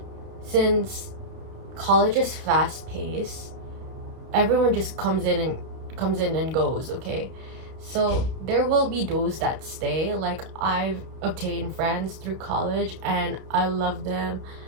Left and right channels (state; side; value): late; left; 31 ms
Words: since college is fast paced, everyone just comes in and goes, okay? So there will be those that stay. Like, I've obtained friends through college and I love them